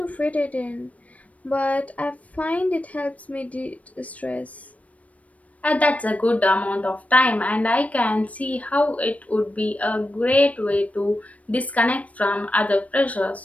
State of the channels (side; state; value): right; late; 0.067 ms